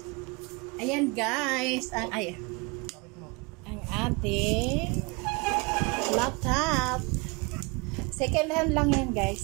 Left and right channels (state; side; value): quieter; left; 29.0 dB